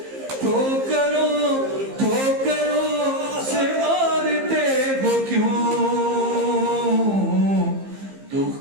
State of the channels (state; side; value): late; left; 15 ms